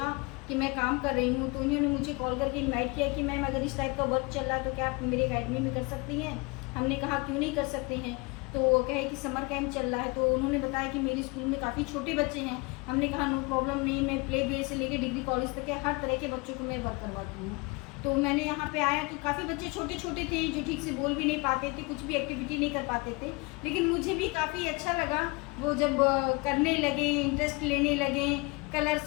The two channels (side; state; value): right; quieter; 27.2 dB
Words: कि मैं काम कर रही हूँ, तो उन्होंने मुझे कॉल करके इनवाइट किया कि मैम अगर इस टाइप का वर्क चल रहा है तो क्या आप मेरे अकेडमी में कर सकती हैं। हमने कहा क्यों नहीं कर सकते हैं। तो वो कहे कि समर कैंप चल रहा है, तो उन्होंने बताया कि मेरे स्कूल में काफ़ी छोटे बच्चे हैं। हमने कहा नो प्रॉब्लम नहीं, मैं प्ले बी से लेकर डिग्री कॉलेज तक के हर तरह के बच्चों को मैं वर्क करवाती हूँ। तो मैंने यहाँ पे आया तो काफ़ी बच्चे छोटे छोटे थे जो ठीक से बोल भी नहीं पाते थे, कुछ भी एक्टिविटी नहीं कर पाते थे, लेकिन मुझे भी काफ़ी अच्छा लगा वो जब करने लगे, इंटरेस्ट लेने लगे,